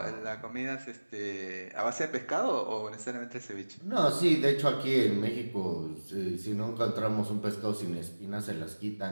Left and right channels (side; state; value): both; inverted; correlation -1.00